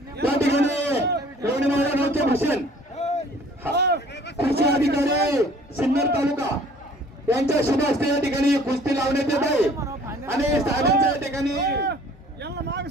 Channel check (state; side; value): normal; both; correlation 0.53